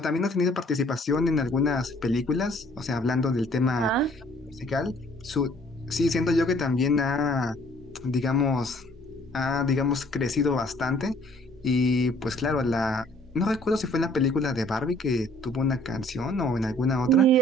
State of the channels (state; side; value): normal; both; correlation 0.58